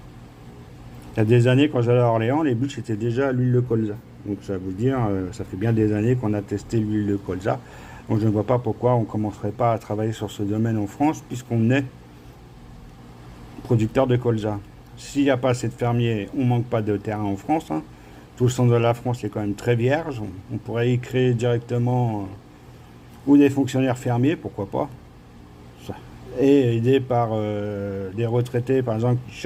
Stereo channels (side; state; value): both; identical; correlation 1.00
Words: y a des années, quand j'allais à Orléans, les bûches c'était déjà l'huile de colza. Donc, ça veut dire, ça fait bien des années qu'on a testé l'huile de colza. Donc, je ne vois pas pourquoi on ne commencerait pas à travailler sur ce domaine en France, puisqu'on est producteur de colza. S'il n'y a pas assez de fermiers, on ne manque pas de terrain en France, hein. Tout le centre de la France est quand même très vierge. On pourrait y créer directement ou des fonctionnaires fermiers, pourquoi pas, et aidé par des retraités, par exemple, qui